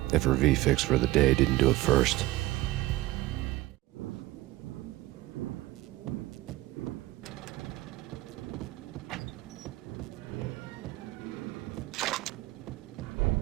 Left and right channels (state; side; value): quieter; left; 17.8 dB